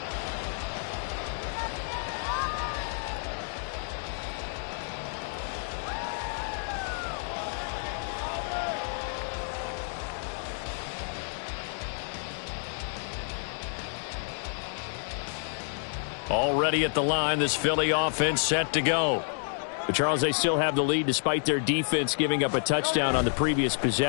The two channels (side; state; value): right; silent; digital silence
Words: Already at the line, this Philly offense set to go. But Charles, they still have the lead despite their defense giving up a touchdown on the previous